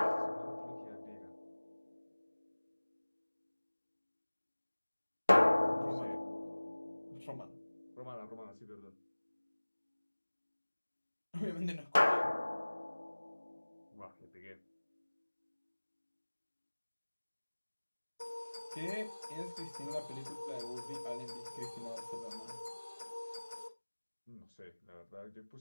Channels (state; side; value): inverted; both; correlation -1.00